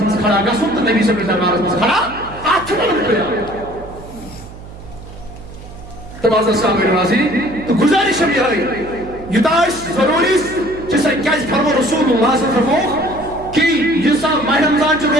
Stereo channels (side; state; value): right; noise; hum, 16 dB below the sound